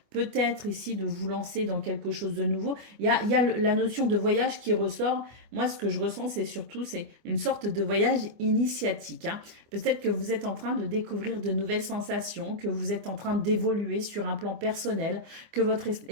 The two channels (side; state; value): left; late; 25 ms